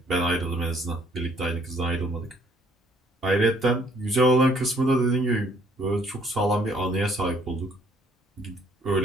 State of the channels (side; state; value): both; normal; correlation 0.63